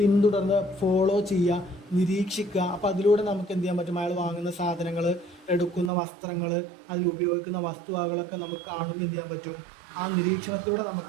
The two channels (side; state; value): left; drops out; at 5.9 s